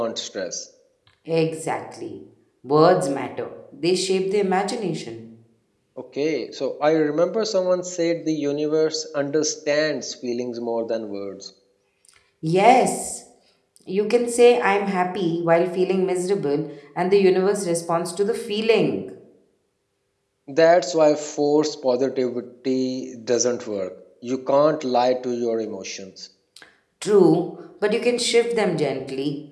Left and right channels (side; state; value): both; identical; correlation 1.00